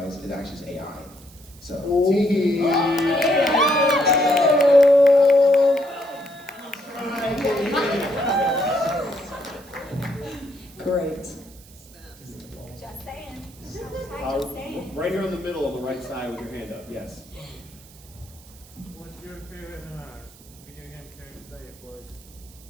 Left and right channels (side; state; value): right; noise; hiss, 23 dB below the sound